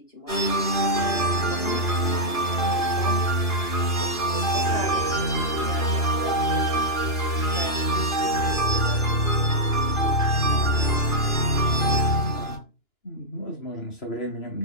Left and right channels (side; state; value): right; late; 2.9 ms